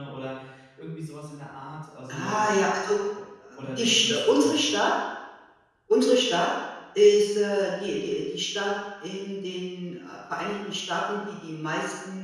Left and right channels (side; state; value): both; identical; correlation 1.00